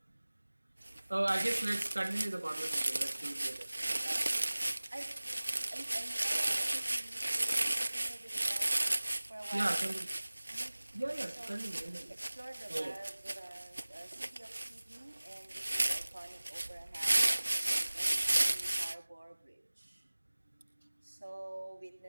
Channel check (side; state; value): both; inverted; correlation -1.00